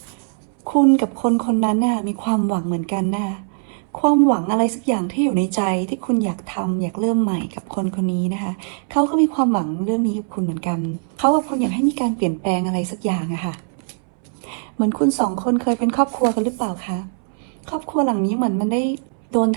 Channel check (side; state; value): left; silent; 65 dB below the other